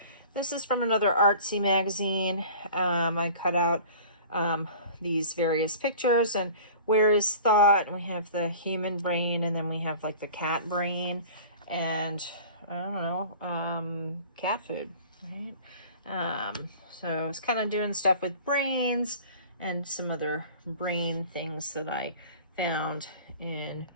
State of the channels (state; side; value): inverted; both; correlation -0.43